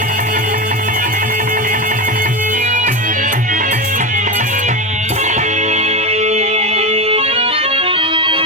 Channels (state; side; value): normal; both; correlation 0.18